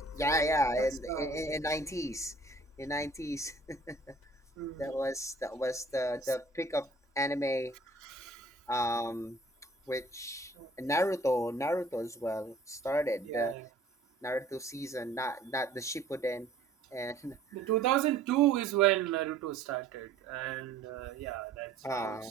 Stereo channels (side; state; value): left; quieter; 3.2 dB